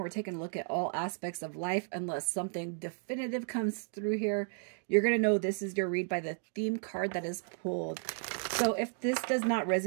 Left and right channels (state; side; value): silent; left; 55 dB below the other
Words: taking a look at all aspects of life unless something definitive comes through here. You're going to know this is your read by the theme card that is pulled. So if this does not